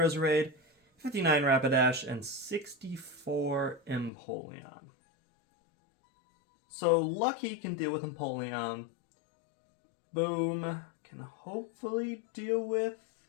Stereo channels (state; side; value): drops out; right; at 4.1 s